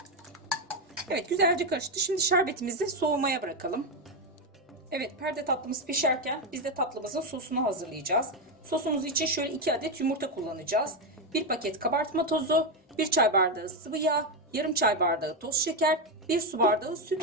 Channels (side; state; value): both; normal; correlation 0.08